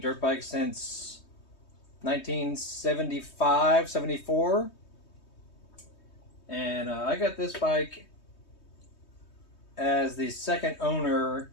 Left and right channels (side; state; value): right; late; 3.2 ms